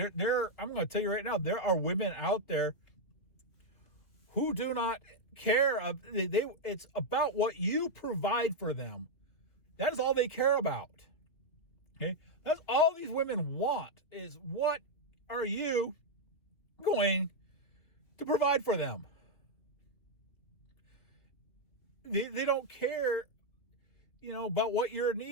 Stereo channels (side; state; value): right; late; 3.1 ms